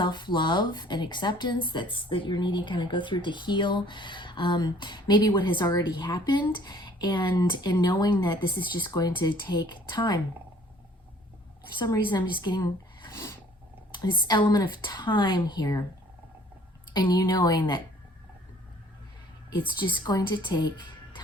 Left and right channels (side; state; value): both; normal; correlation 0.55